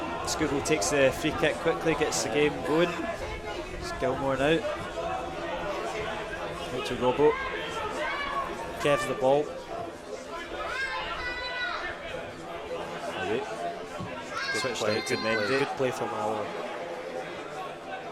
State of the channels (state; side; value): identical; both; correlation 1.00